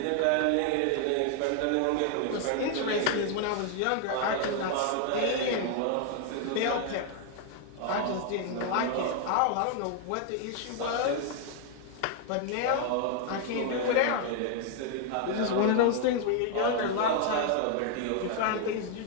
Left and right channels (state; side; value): different; both; correlation 0.00